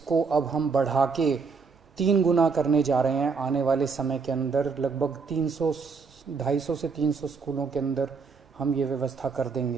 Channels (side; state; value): left; quieter; 5.0 dB